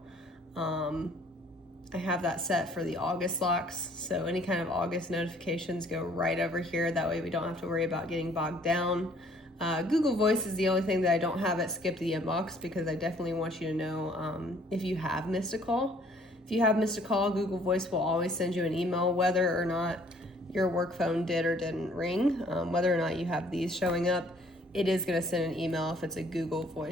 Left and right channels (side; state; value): both; normal; correlation 0.59